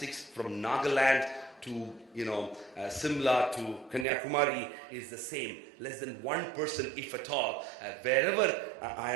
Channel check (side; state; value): left; drops out; at 4.0 s